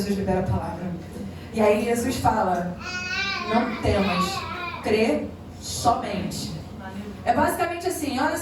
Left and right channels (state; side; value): identical; both; correlation 1.00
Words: libera a palavra. E aí Jesus fala, não temas, crê somente. É basicamente assim, olha